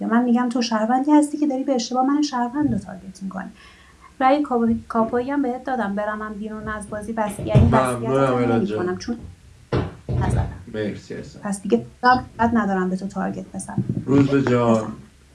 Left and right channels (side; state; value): both; identical; correlation 1.00